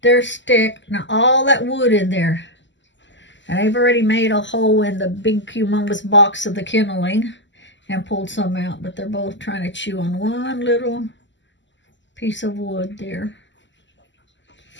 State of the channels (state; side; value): late; right; 0.54 ms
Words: stick. Now all that wood in there. And I've already made a hole in the big humongous box of the kenneling and pulled some out. But they're both trying to chew on one little piece of wood there.